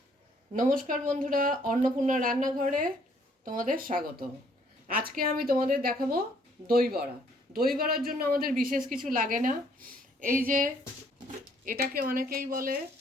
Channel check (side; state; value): both; normal; correlation 0.65